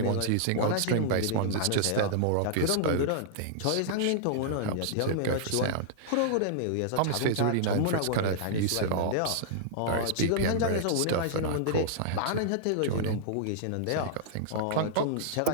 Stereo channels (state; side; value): different; both; correlation -0.01